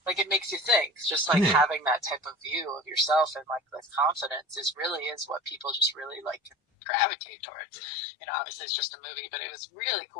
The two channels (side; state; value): right; drops out; at 6.6 s